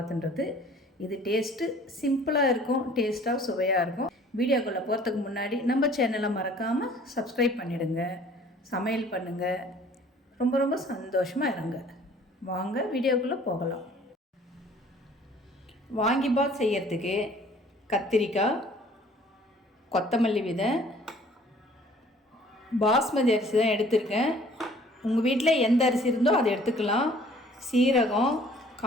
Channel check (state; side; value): normal; both; correlation 0.53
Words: இது டேஸ்ட்டு சிம்பிளாக இருக்கும், டேஸ்ட்டாக சுவையாக இருக்கும். வீடியோக்குள்ளே போகிறதுக்கு முன்னாடி நம்ம சேனலை மறக்காமல் சப்ஸ்கிரைப் பண்ணிவிடுங்க, சமையல் பண்ணுங்கள், ரொம்ப ரொம்ப சந்தோஷமாக இருங்க. வாங்க வீடியோக்குள்ளே போகலாம். வாங்கி பாத் செய்யறதுக்கு கத்திரிக்காய், கொத்தமல்லி விதை, பாஸ்மதி அரிசி தான் எடுத்திருக்கேன். உங்கள் வீட்டில் எந்த அரிசி இருந்தோ அதை எடுத்துக்கலாம். சீரகம்,